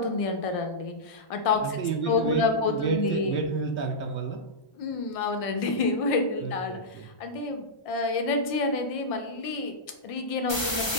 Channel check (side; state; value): right; late; 1.3 ms